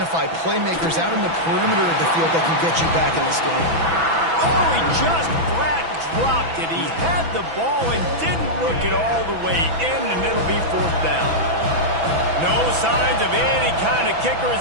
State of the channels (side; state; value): left; late; 6.0 ms